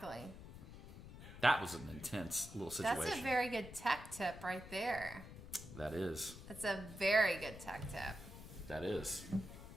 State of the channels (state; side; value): noise; left; rumble, 14 dB below the sound